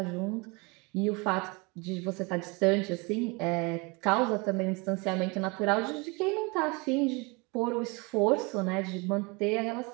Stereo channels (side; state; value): left; quieter; 28.0 dB